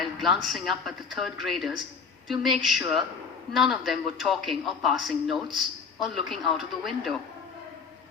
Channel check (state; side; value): quieter; right; 5.6 dB